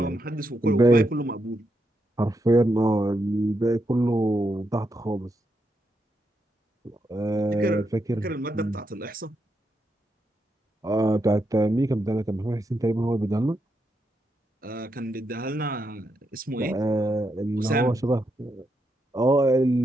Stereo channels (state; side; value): normal; both; correlation 0.82